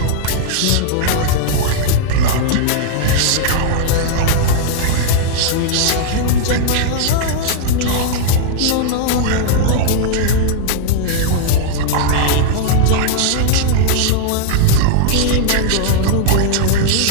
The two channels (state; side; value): different; both; correlation -0.01